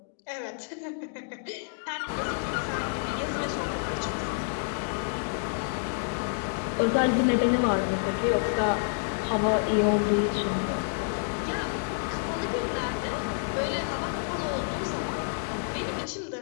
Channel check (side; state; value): right; silent; digital silence